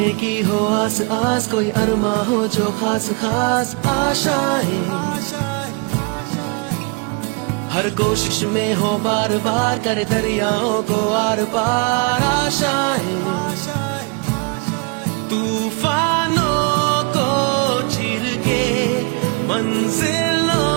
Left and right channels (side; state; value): left; quieter; 31.9 dB